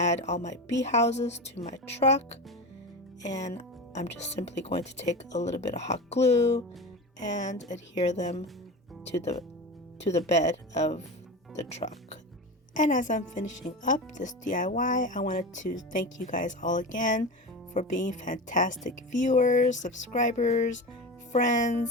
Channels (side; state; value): both; normal; correlation 0.26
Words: all my bee houses to my truck, and I'm just simply going to take a little bit of hot glue and adhere them to the bed of the truck. And as I'm finishing up this DIY, I wanted to thank you guys all again for being fantastic viewers, subscribers,